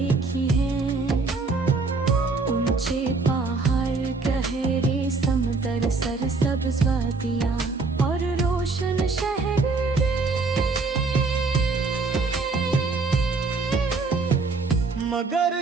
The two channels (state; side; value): quieter; left; 4.0 dB